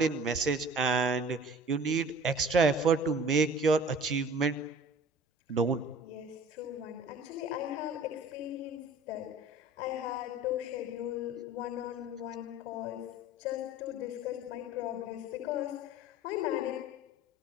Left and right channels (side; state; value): both; normal; correlation 0.45